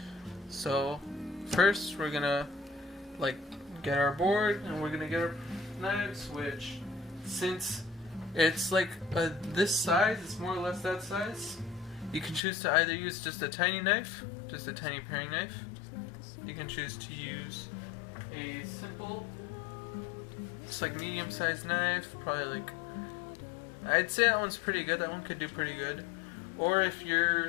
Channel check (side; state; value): right; drops out; at 12.4 s